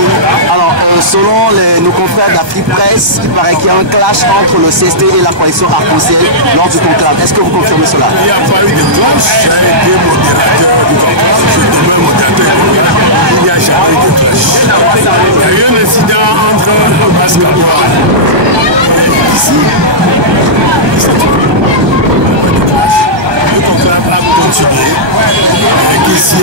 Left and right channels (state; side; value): late; left; 1.3 ms